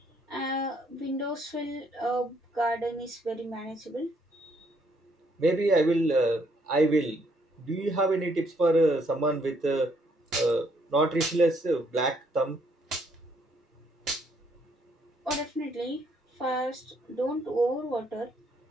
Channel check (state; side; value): normal; both; correlation 0.69